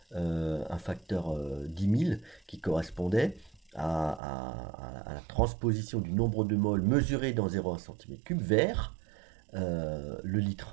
10 000 qui correspondait à la transposition du nombre de moles mesuré dans 0,1 cm3 vers le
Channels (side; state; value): left; drops out; at 4.2 s